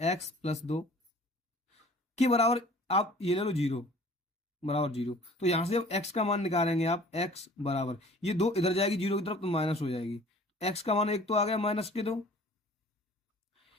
के बराबर, आप ये ले लो 0, बराबर 0, तो यहां से अब x का मान निकालेंगे आप, x बराबर, ये 2 इधर जाएगी 0 की तरफ तो माइनस हो जाएगी, x का मान 1 तो आ गया -2।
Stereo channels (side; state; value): both; normal; correlation 0.49